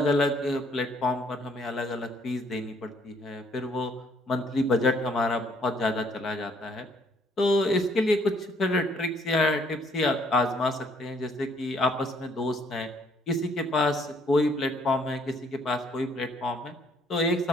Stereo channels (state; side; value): normal; both; correlation 0.65